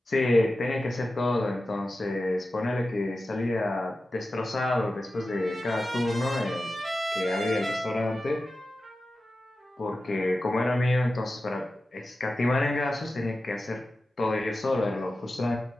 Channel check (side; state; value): both; normal; correlation 0.93